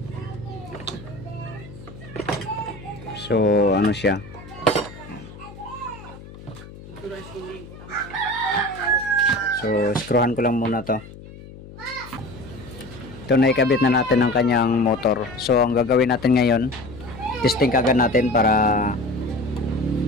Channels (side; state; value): left; noise; hum, 17 dB below the sound